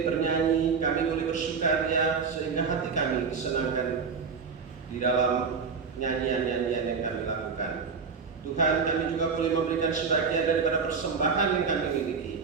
bernyanyi, kami boleh bersukaria, sehingga hati kami disenangkan di dalam nyanyian-nyanyian yang kami lakukan. Tuhan, kami juga boleh memberikan sebagian daripada persembahan yang kami miliki.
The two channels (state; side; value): quieter; left; 5.5 dB